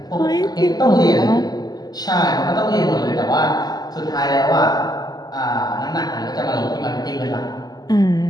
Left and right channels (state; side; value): late; right; 0.19 ms